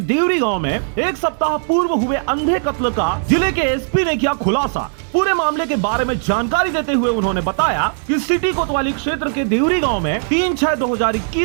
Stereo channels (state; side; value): silent; left; digital silence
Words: देवरी गांव में एक सप्ताह पूर्व हुए अंधे कत्ल का जिले के एसपी ने किया खुलासा। पूरे मामले के बारे में जानकारी देते हुए उन्होंने बताया कि सिटी कोतवाली क्षेत्र के देवरी गांव में